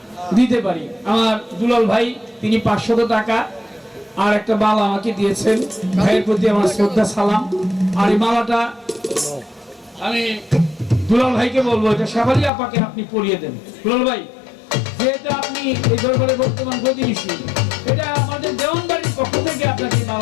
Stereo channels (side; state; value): right; drops out; at 12.5 s